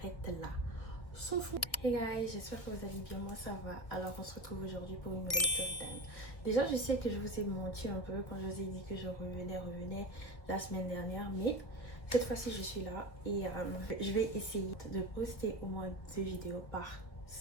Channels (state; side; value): late; right; 1.6 ms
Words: là. Son front. Hey guys, j'espère que vous allez bien, moi ça va. Alors on se retrouve aujourd'hui pour une nouvelle story time. Déjà je sais que je vous ai menti un peu quand je vous ai dit que je revenais la semaine dernière, mais cette fois-ci je suis là et je vais essayer de poster au moins 2 vidéos par